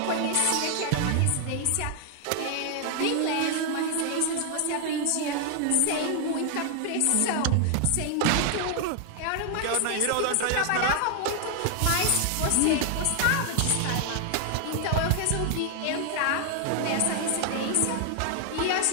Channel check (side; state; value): both; different; correlation 0.00